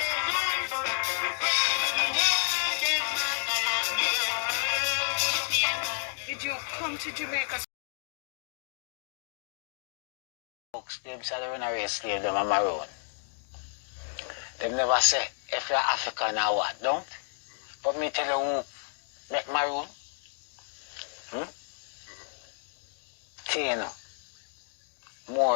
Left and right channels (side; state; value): right; silent; digital silence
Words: Did you come to Jamaica? Folks, them say they run a race slave, them a Maroon. They never say if you're African or what, don't? But me tell you who make Maroon. Tino.